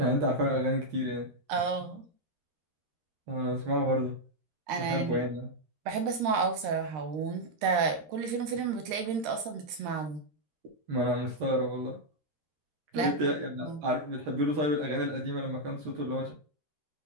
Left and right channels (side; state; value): left; late; 13 ms